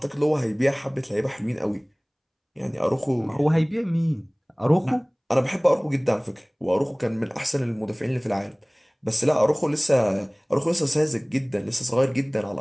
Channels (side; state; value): both; identical; correlation 1.00